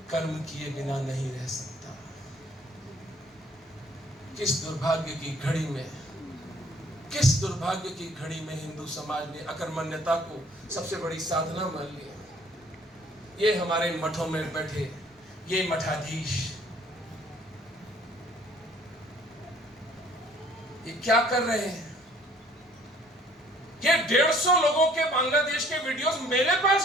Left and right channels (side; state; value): both; normal; correlation 0.58